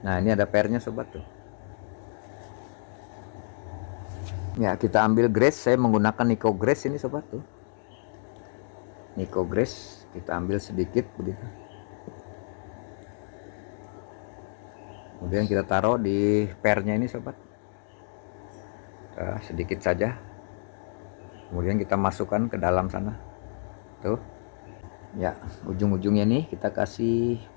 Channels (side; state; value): right; silent; digital silence